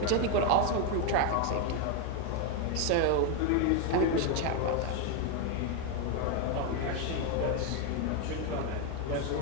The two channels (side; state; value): both; different; correlation 0.02